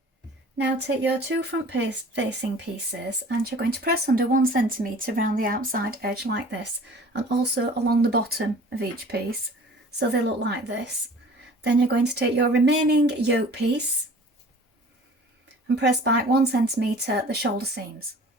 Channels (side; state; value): both; normal; correlation 0.46